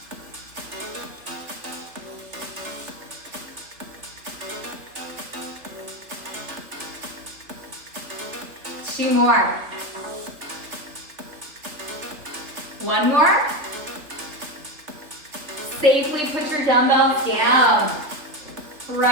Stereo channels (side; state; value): left; late; 3.1 ms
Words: Two more. One more. Safely put your dumbbells down.